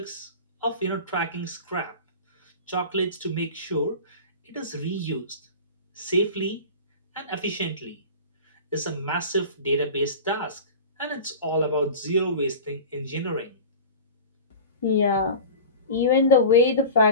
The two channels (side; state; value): both; inverted; correlation -0.34